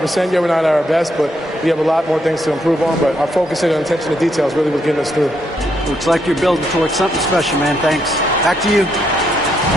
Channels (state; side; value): normal; both; correlation 0.76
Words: yet. We're not at our best, but we have a lot more things to improve on. But our focus and attention to details really was getting us through. Looks like you're building towards something special, man. Thanks. Back to you.